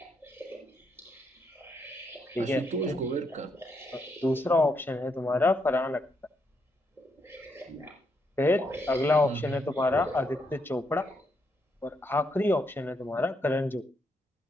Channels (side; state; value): both; normal; correlation 0.78